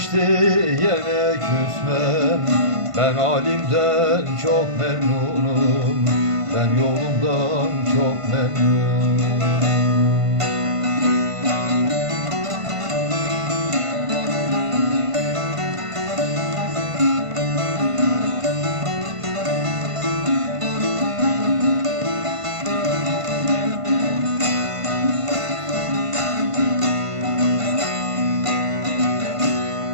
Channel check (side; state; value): left; late; 1.5 ms